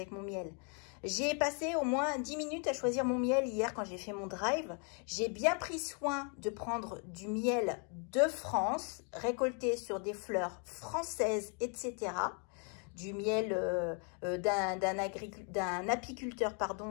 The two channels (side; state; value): right; quieter; 39.7 dB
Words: mon miel. J'ai passé au moins 10 minutes à choisir mon miel hier quand j'ai fait mon drive. J'ai bien pris soin de prendre du miel de France, récolté sur des fleurs françaises, etc., du miel d'un apiculteur